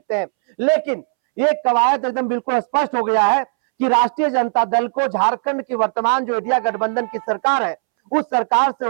हैं। लेकिन ये कवायद एकदम बिल्कुल स्पष्ट हो गया है कि राष्ट्रीय जनता दल को झारखंड की वर्तमान जो इंडिया गठबंधन की सरकार है, उस सरकार से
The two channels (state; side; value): silent; left; 67 dB below the other